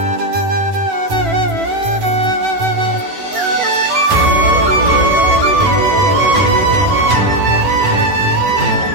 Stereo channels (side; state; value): left; late; 10 ms